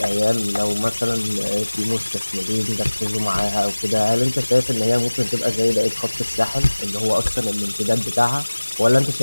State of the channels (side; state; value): both; inverted; correlation -1.00